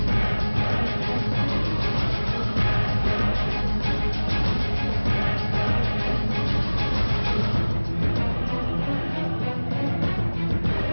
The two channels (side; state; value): both; inverted; correlation -1.00